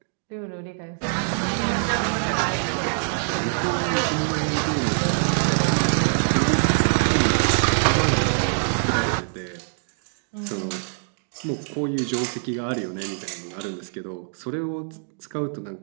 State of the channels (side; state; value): left; silent; 62 dB below the other